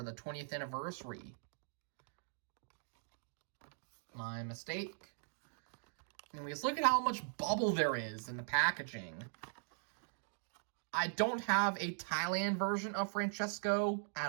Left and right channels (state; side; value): silent; left; digital silence